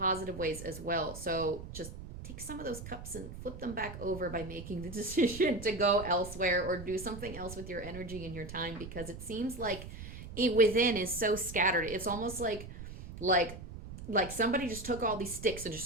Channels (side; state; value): right; noise; rumble, 11 dB below the sound